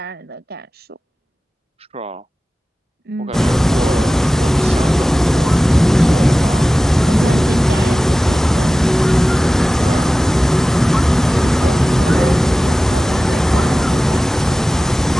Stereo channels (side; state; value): both; normal; correlation 0.96